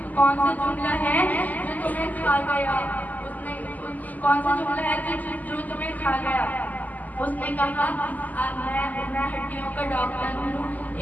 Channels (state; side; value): late; right; 0.080 ms